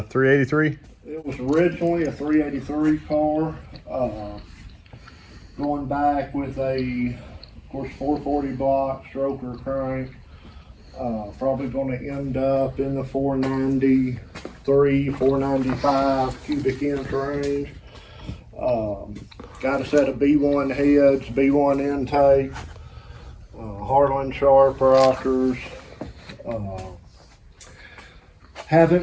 It was originally a 383 car, going back with a, of course, 440 block stroker crank. Probably going to end up in the 493, 495 cubic inch range. Got a set of B1 heads, B1 intake, Harlan Sharp rockers. Haven't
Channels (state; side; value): identical; both; correlation 1.00